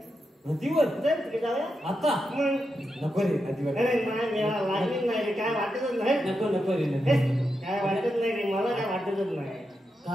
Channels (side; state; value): both; normal; correlation 0.86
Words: नदीवर तिकडे जाऊया आता. नको रे नदीवर. अरे नाही लागली नाही रे काय वाटतच नाही. नको नको रे काय वाटत नाही रे मला काय वाटतच नाही.